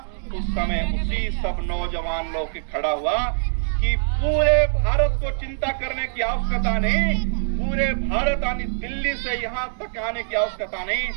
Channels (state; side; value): silent; left; digital silence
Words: उस समय उसी सब नौजवान लोग के खड़ा हुआ कि पूरे भारत को चिंता करने की आवश्यकता नहीं, पूरे भारत आने दिल्ली से यहाँ तक आने की आवश्यकता नहीं,